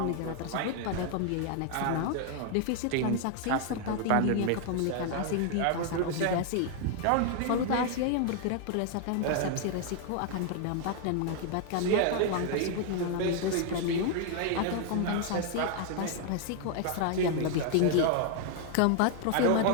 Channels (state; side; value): different; both; correlation 0.00